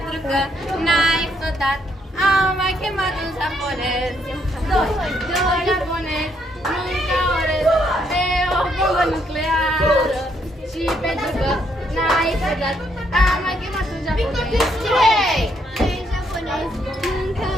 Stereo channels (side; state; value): both; normal; correlation 0.73